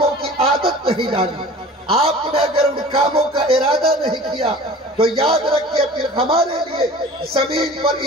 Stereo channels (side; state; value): both; normal; correlation 0.42